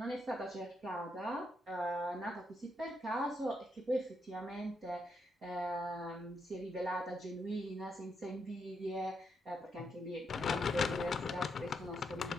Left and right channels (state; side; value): normal; both; correlation 0.80